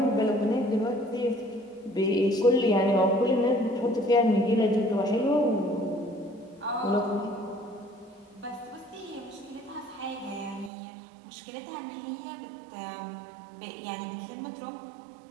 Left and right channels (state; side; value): drops out; left; at 10.7 s